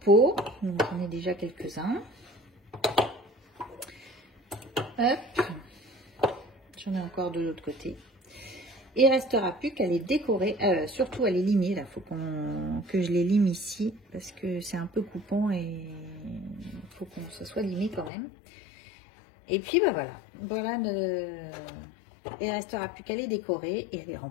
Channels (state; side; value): drops out; right; at 18.1 s